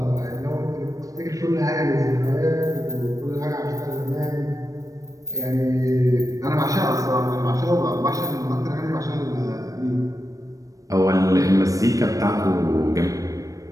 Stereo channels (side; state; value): left; late; 0.16 ms